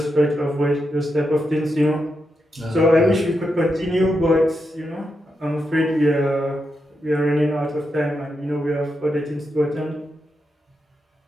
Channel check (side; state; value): both; normal; correlation 0.85